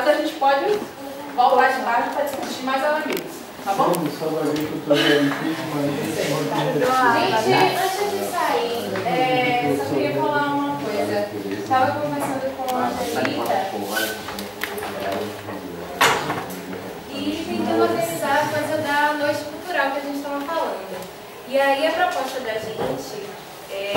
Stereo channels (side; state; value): both; identical; correlation 1.00